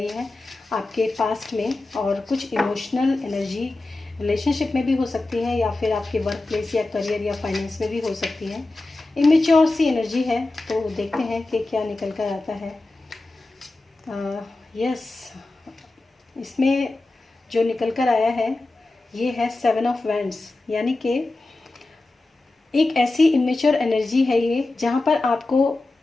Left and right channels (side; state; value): right; quieter; 3.0 dB